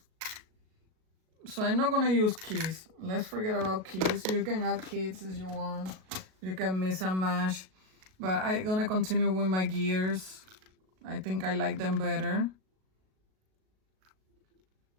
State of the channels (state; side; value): late; left; 37 ms